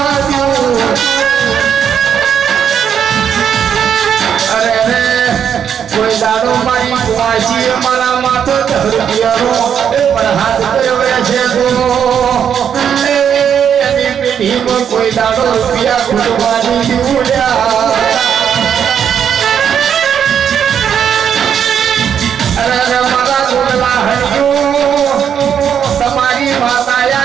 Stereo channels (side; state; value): left; quieter; 8.3 dB